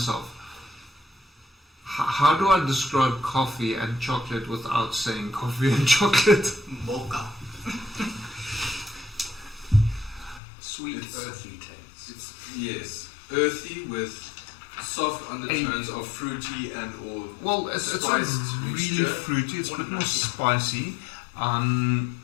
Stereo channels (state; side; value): drops out; right; at 10.4 s